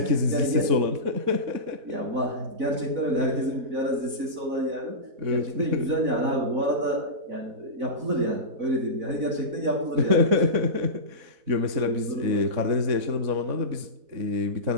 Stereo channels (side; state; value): left; late; 4.1 ms